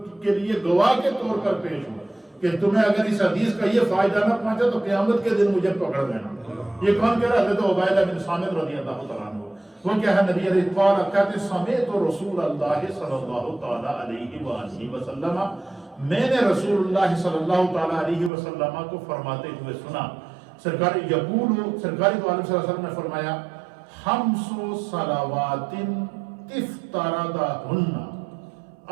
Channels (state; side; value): drops out; left; at 18.3 s